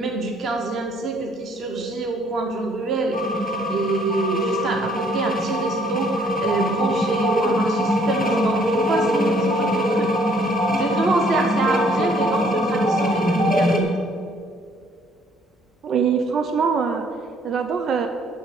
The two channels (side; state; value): both; normal; correlation 0.63